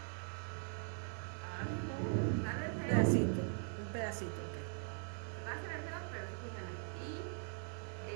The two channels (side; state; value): left; silent; 50 dB below the other